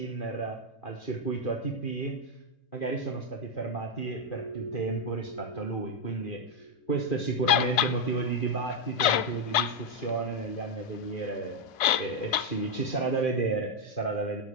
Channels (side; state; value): right; late; 2.6 ms